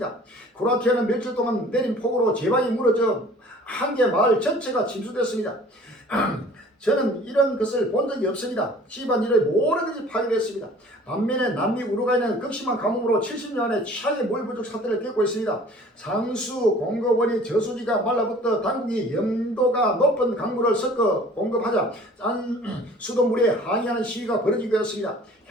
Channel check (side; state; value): both; normal; correlation 0.50